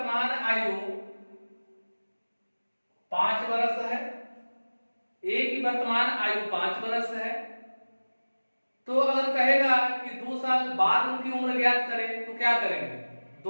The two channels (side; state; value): both; inverted; correlation -1.00